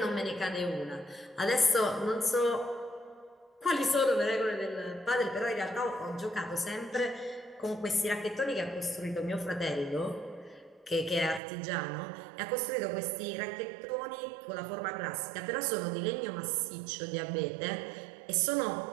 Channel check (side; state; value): left; drops out; at 11.4 s